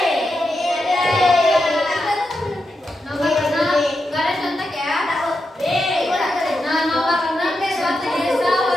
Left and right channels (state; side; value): normal; both; correlation 0.87